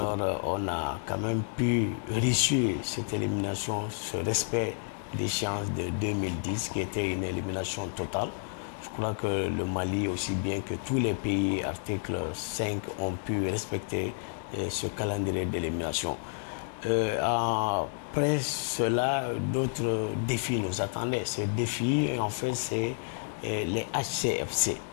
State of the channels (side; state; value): right; silent; digital silence